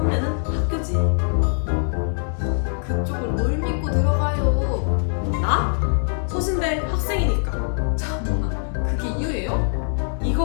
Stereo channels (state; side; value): silent; right; 64 dB below the other